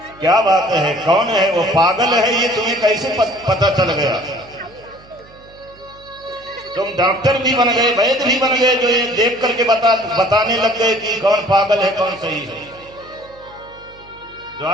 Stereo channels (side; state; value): right; noise; hum, 25 dB below the sound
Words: क्या बात है, कौन है वो, पागल है ये, तुम्हें कैसे पता चल गया? तुम डॉक्टर भी बन गए, वैद्य भी बन गए, जो ये देख करके बताने लग गए कि कौन पागल है कौन सही है।